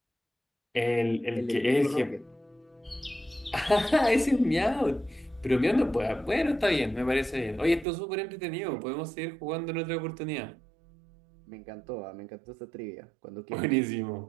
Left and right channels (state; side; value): drops out; left; at 7.9 s